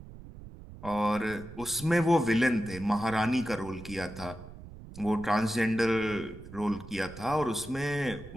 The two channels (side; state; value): right; noise; rumble, 15 dB below the sound